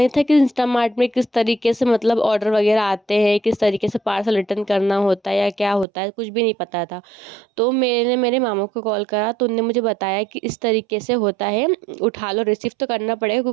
था कि इंस्टामार्ट में किस तरीके से मतलब ऑर्डर वगैरह आते हैं, किस तरीके से पार्सल रिटर्न करना होता है या क्या होता है, कुछ भी नहीं पता था। तो मैंने मेरे मामा को कॉल करा, तो उन्होंने मुझे बताया कि इस तरीके से होता है, उठा लो, रिसीव तो करना पड़ेगा,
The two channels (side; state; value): left; drops out; at 5.9 s